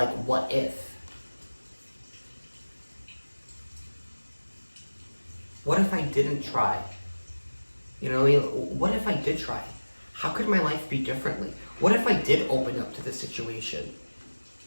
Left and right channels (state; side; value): inverted; both; correlation -1.00